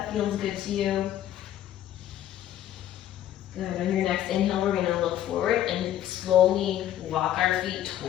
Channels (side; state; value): right; quieter; 11.8 dB